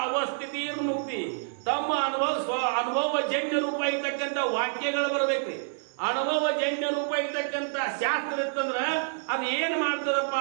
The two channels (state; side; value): silent; left; digital silence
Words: ಅವಸ್ಥಿತಿ ಮುಕ್ತಿ, ತಮ್ಮ ಅನುಭವ ಜನ್ಯ ರೂಪ ಇರ್ತಕ್ಕಂಥ ವಾಕ್ಯಗಳು ಬರ್ಬೇಕ್ರಿ. ಅನುಭವ ಜನ್ಯ ರೂಪ ಇರ್ತಕ್ಕಂಥ ಶಾಸ್ತ್ರ ಇತ್ತಂದ್ರ ಅದು ಏನ್ ಮಾಡ್ತದಪ್ಪ